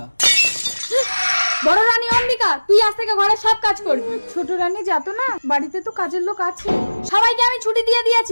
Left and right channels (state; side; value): inverted; both; correlation -1.00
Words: বড় রানী অম্বিকা, তুই আজ থেকে ঘরের সব কাজ করবি। ছোট রানী যাতো না, বাড়িতে তো কাজের লোক আছে। সবাইকে আমি ছুটি দিয়ে